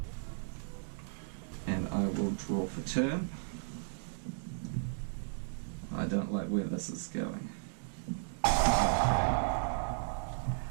and I will draw for turn. I don't like where this is going.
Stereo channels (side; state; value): left; silent; digital silence